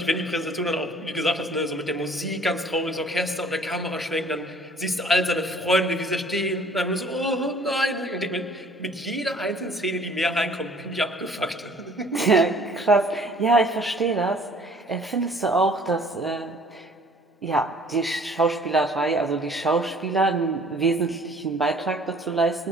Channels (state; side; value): normal; both; correlation 0.54